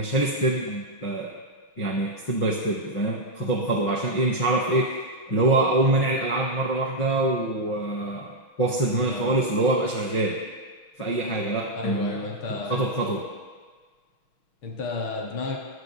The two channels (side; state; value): right; late; 6.2 ms